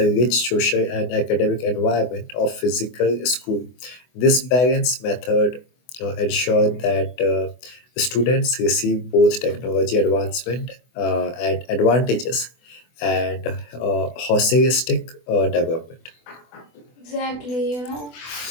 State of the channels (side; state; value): right; late; 24 ms